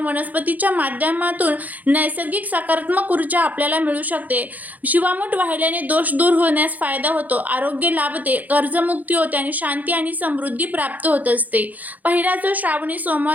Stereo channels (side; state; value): left; late; 0.080 ms